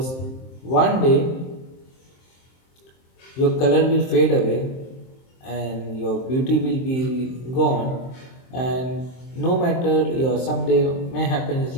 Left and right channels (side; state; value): right; late; 23 ms